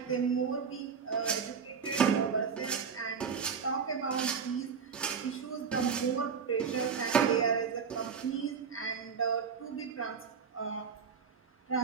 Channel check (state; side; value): quieter; left; 6.3 dB